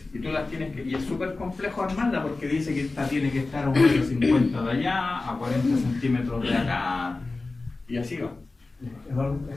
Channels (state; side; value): quieter; right; 3.5 dB